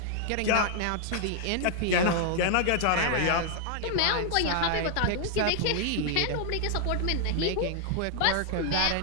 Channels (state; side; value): different; both; correlation 0.00